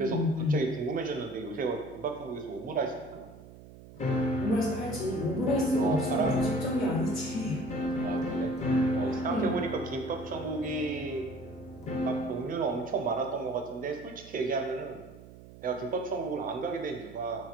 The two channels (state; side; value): noise; right; hum, 18 dB below the sound